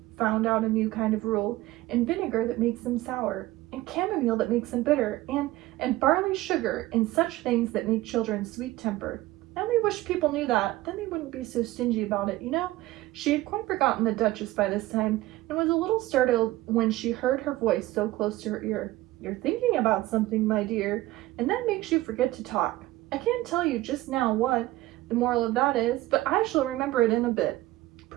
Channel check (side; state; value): left; quieter; 17.4 dB